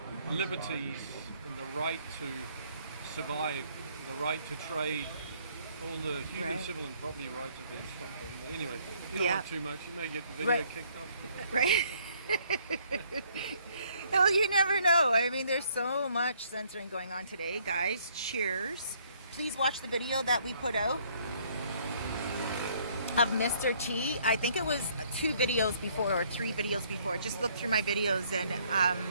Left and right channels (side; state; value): both; inverted; correlation -0.64